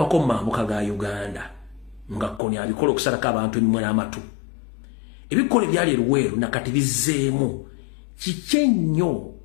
mu mambuka ga Uganda nga Kony abikola okusalako abantu emimwe n'amatu. Ebikolwa ebyali eruweeru nakati bizzeemu kiki ennyo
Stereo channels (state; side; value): drops out; right; at 2.4 s